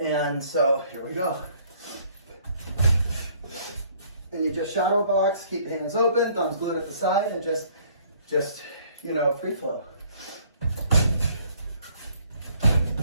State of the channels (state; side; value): inverted; both; correlation -0.60